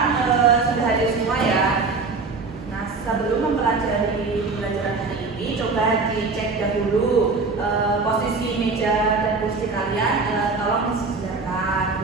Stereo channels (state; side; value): quieter; left; 4.1 dB